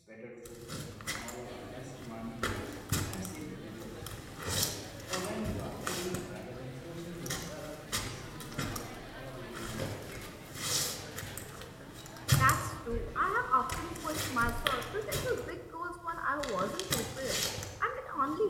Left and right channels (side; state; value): both; identical; correlation 1.00